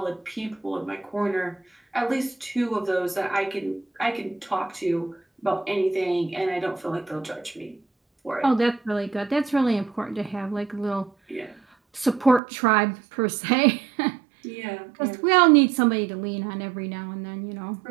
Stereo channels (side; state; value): left; drops out; at 12.4 s